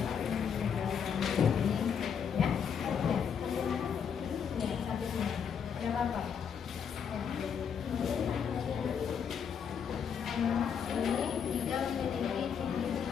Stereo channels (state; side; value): quieter; right; 7.4 dB